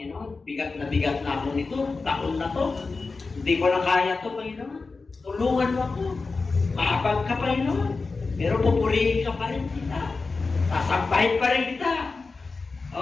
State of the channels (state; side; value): quieter; right; 4.1 dB